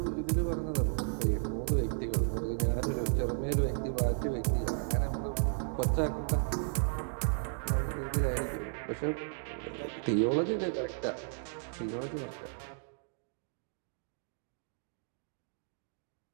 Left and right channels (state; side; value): silent; left; digital silence